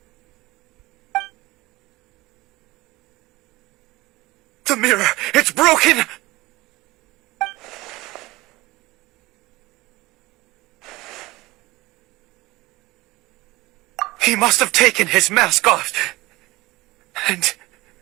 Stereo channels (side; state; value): left; quieter; 20.2 dB